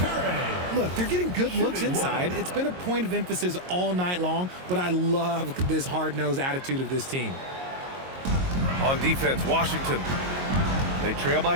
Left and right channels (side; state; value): left; late; 22 ms